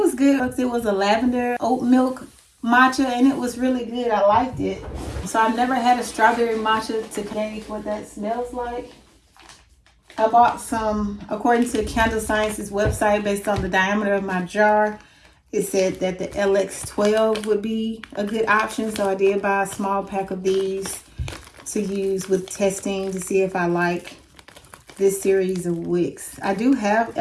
good. It was a lavender oat milk matcha and it was really good. I liked it. So I've never had a strawberry matcha to gauge what that smells like. I bought some, according to Candle Science's website, based on the diameter of my jar. it said that the LX12 would be a good option. So I did buy a small pack of these to use with testing to see if I like this series of wicks. I do have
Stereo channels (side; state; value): both; identical; correlation 1.00